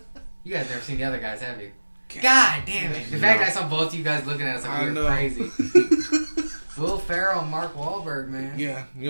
You guys never seen The Other Guys, have you? God damn it. The fact that I saw both of you guys looking at us like we were crazy. Will Ferrell and Mark Wahlberg, man. Yeah,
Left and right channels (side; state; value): both; inverted; correlation -1.00